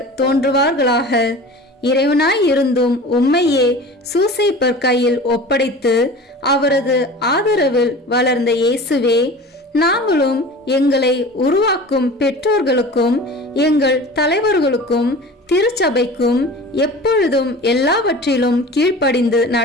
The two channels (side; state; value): both; normal; correlation 0.38